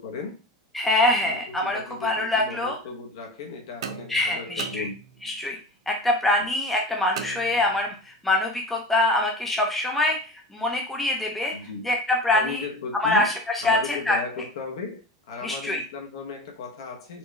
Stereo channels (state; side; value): normal; both; correlation 0.31